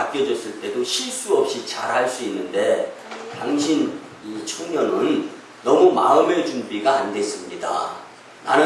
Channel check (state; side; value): identical; both; correlation 1.00